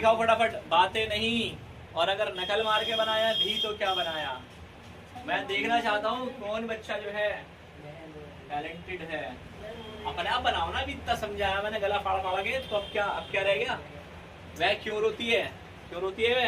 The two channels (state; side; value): identical; both; correlation 1.00